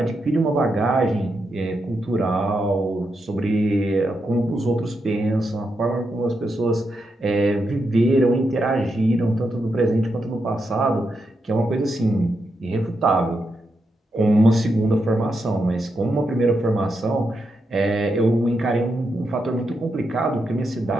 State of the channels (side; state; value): both; normal; correlation 0.84